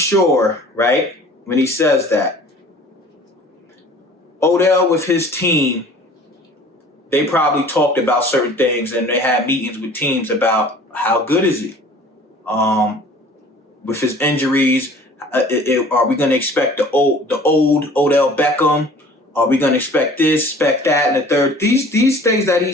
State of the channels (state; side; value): normal; both; correlation 0.48